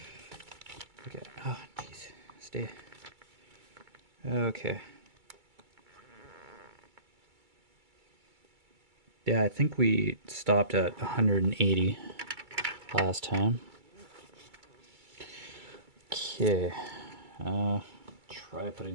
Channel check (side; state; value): left; late; 2.3 ms